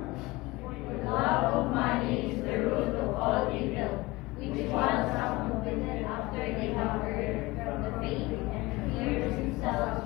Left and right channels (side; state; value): right; quieter; 21.3 dB